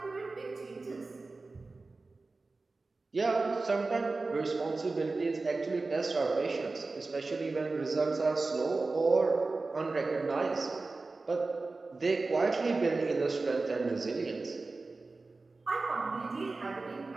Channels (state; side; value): quieter; left; 3.6 dB